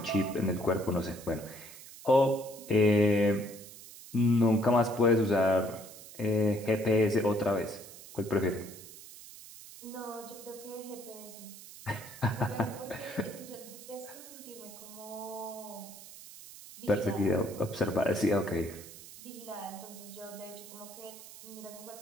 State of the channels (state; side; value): noise; right; hiss, 16 dB below the sound